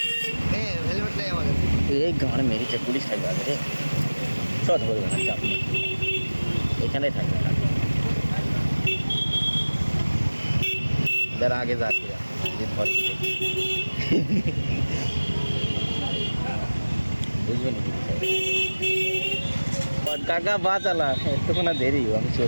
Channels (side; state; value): both; inverted; correlation -1.00